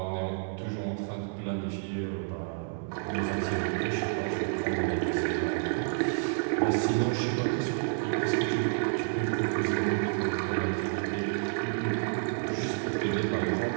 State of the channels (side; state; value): left; silent; digital silence